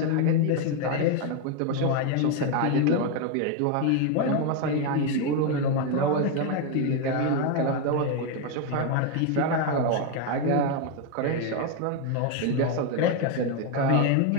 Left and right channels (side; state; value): both; different; correlation 0.02